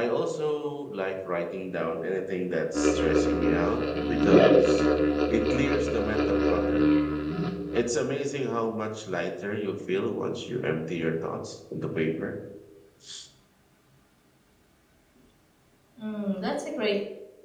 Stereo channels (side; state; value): both; identical; correlation 1.00